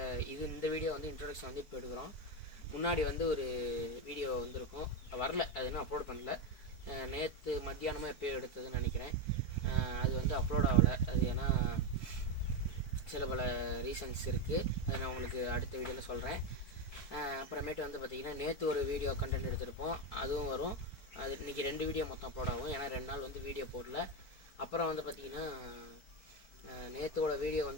இந்த வீடியோ வந்து இன்ட்ரோடக்ஷன் வந்து இப்போ எடுக்கிறோம். முன்னாடி வந்து ஒரு வீடியோ வந்துருக்கும், வரல, அது இன்னும் அப்லோட் பண்ணல. நேற்று மத்தியானமாக எப்போயோ எடுத்ததுன்னு நினைக்கிறேன். அது வந்து அப்லோட் ஆகலை. அது ஏன்னா சில பல ரீசன்ஸ் இருக்குது. அதை நான் உங்களுக்கு அடுத்த வீடியோவில் சொல்கிறேன். அப்புறமேட்டு வந்து பார்த்திங்கன்னா, நேற்று ஒரு வீடியோ கண்டென்ட் எடுத்திருப்போம், அதுவும் வரும். அது இன்றைக்கி 2 வீடியோ மொத்தம் அப்லோட் ஆகும், ஏன்னா 2 நாள் வந்து வீடியோ போடல. அப்புறம் வந்து பார்த்திங்கன்னா, நேற்றோட வீடியோ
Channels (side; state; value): right; late; 4.5 ms